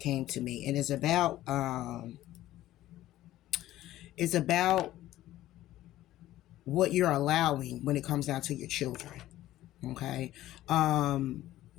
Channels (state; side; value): quieter; right; 14.6 dB